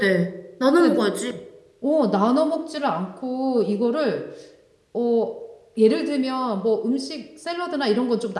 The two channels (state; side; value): identical; both; correlation 1.00